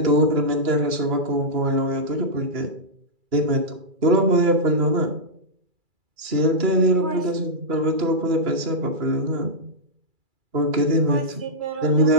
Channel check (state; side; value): late; left; 2.3 ms